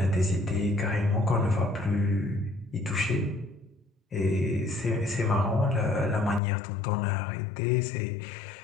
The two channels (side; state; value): right; drops out; at 6.4 s